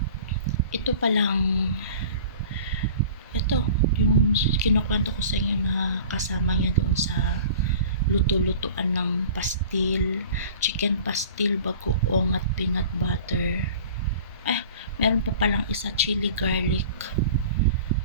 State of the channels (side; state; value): both; inverted; correlation -0.43